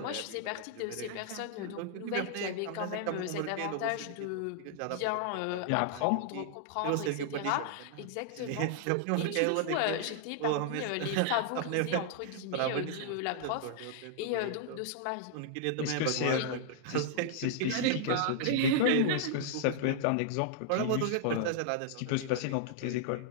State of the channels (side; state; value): both; different; correlation -0.01